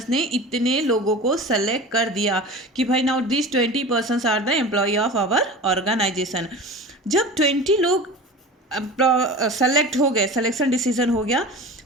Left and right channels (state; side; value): normal; both; correlation 0.34